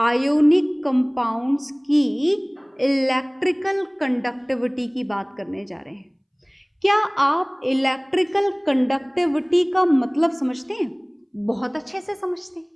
कंपाउंड्स की इलेक्ट्रिकल कंडक्टिविटी की बात करने जा रहे हैं। क्या आप इलेक्ट्रिकल कंडक्टिविटी का मतलब समझते हैं? बहुत अच्छे से समझते हैं,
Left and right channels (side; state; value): both; identical; correlation 1.00